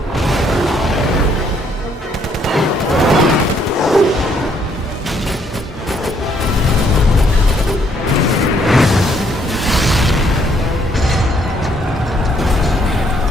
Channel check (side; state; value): both; normal; correlation 0.68